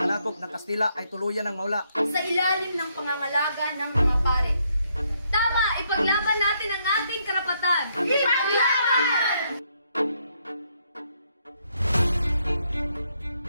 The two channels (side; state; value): both; inverted; correlation -0.74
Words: ng Kastila ay tuluyan ng mawala. Sa ilalim ng pangangalaga ng mga pare. Tama! Ipaglaban natin ang ating karapatan! Ipaglaban!